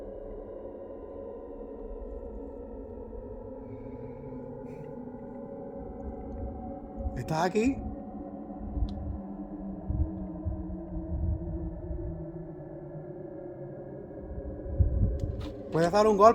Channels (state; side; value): identical; both; correlation 1.00